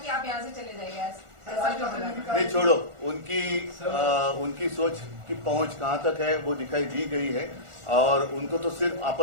आप यहाँ से चले जाइए, ऐसा क्यों बोला? नहीं, छोड़ो, उनकी सोच की पहुंच कहां तक है वो दिखाई दी गई है, और उनको तो सिर्फ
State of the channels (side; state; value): left; late; 1.4 ms